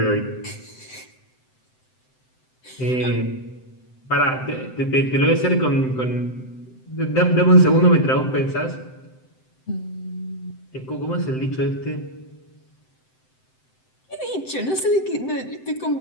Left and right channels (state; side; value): late; right; 7.8 ms